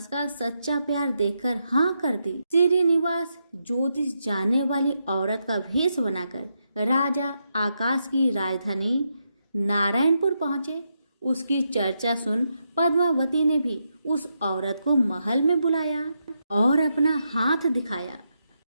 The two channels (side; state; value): both; inverted; correlation -0.83